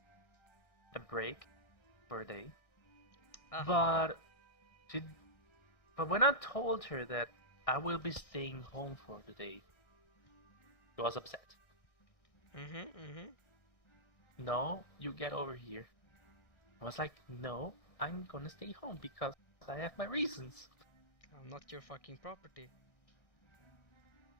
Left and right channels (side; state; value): right; late; 1.7 ms